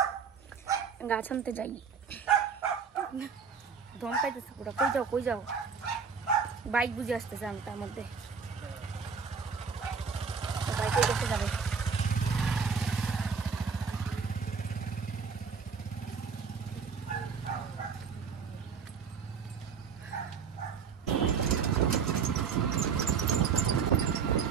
গাছ আনতে যাই, দম পাইতেছে পুরো। কই যাও বাইক বুঝে আসতেছে আমি তার মধ্যে, বাইকে দেখতে যাবে।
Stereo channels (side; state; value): left; quieter; 6.0 dB